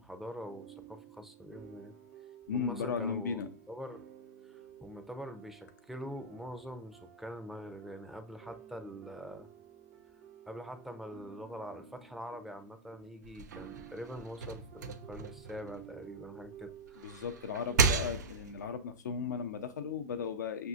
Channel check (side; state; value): both; normal; correlation -0.08